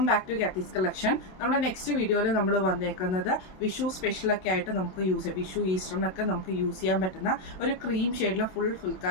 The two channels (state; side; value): late; right; 27 ms